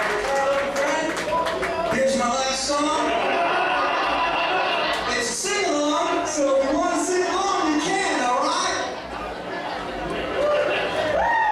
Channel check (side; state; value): both; identical; correlation 1.00